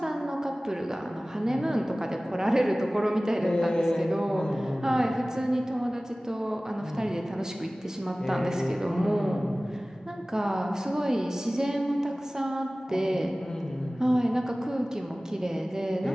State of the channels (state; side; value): normal; both; correlation 0.98